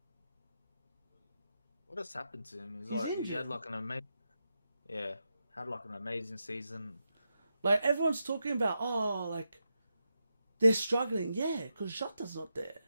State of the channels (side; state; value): both; inverted; correlation -0.86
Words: What has happened to him? He's injured. He had like an Yeah, had like an amazing season. Like everyone's talking about, oh, like they're struggling. Yeah, because Jota's not there